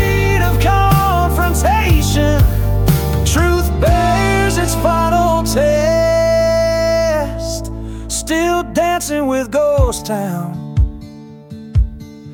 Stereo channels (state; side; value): identical; both; correlation 1.00